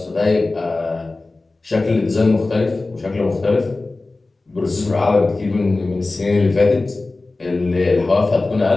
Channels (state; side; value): quieter; right; 3.3 dB